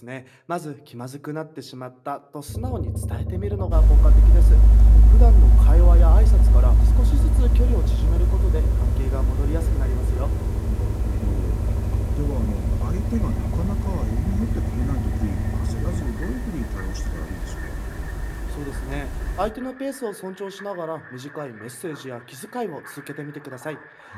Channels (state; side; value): identical; both; correlation 1.00